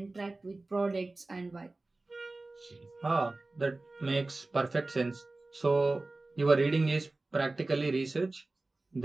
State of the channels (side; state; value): left; quieter; 3.1 dB